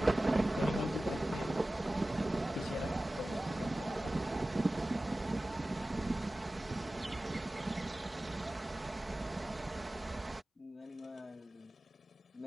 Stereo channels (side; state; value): both; normal; correlation 0.97